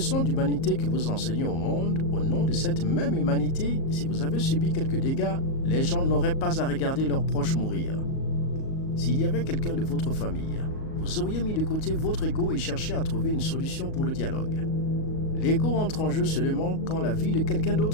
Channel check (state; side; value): late; right; 38 ms